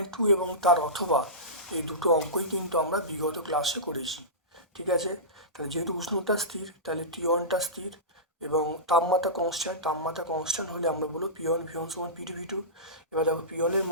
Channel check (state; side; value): normal; both; correlation -0.19